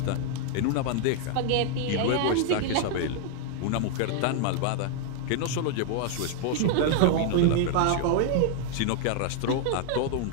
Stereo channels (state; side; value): different; both; correlation 0.00